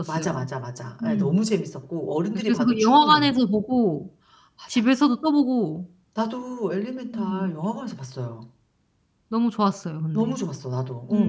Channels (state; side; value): identical; both; correlation 1.00